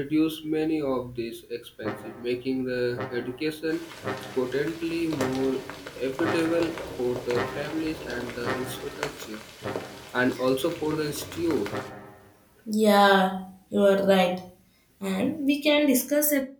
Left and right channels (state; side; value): identical; both; correlation 1.00